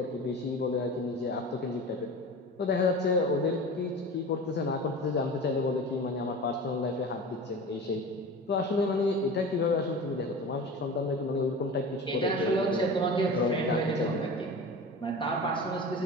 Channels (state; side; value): normal; both; correlation 0.34